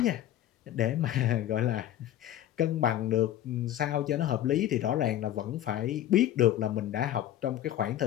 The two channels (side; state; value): right; quieter; 12.3 dB